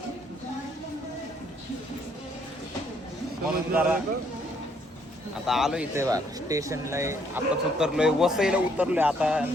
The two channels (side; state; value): both; normal; correlation 0.68